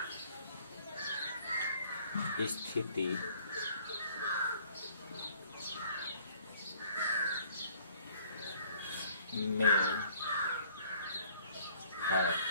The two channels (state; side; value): inverted; both; correlation -0.59